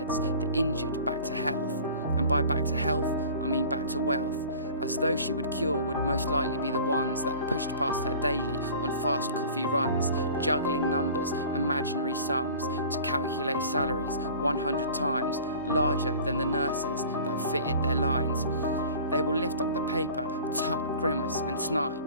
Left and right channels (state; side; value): inverted; both; correlation -0.43